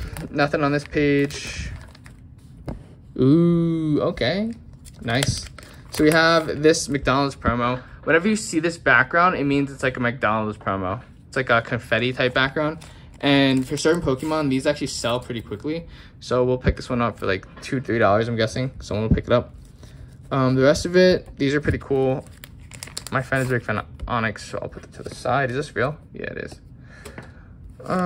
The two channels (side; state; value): both; identical; correlation 1.00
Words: on this page. Ooh, okay. Nice. So we have this McDonald's promo. Whenever you see this background, it means it's like a McDonald's promo. It's like a confetti type background. And for certain Pokemon, these actually sell pretty quickly. So we'll pick this one up for like $2, $3, I'm guessing. Someone will pick it up. The rest of it, these are pretty cool. My friend is a big fan of Onyx, so I'll put it to the side. Is this real? Yeah, it is.